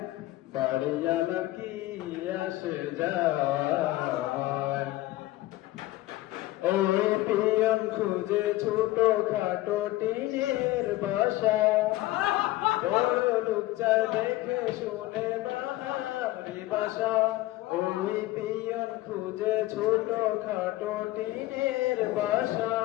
বাড়িওয়ালা কি আসে যায় ওই পিয়ন খুঁজে ছোট খাটো টিনের বাসা বড় লোক চায় দেখে শুনে বাহারি বাসা ওই পিয়ন খুঁজে ছোট খাটো টিনের বাসা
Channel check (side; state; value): right; quieter; 17.3 dB